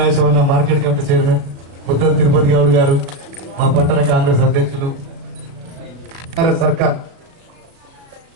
market committee chairman, Muddam Tirupati Goud గారు, మా పట్టణ కాంగ్రెస్ అధ్యక్షులు. సర్కార్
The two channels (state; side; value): late; left; 37 ms